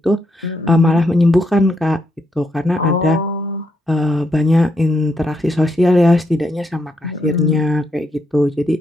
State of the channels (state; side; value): normal; both; correlation 0.79